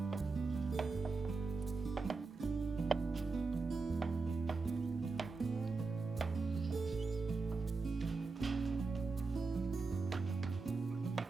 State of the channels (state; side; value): quieter; left; 4.1 dB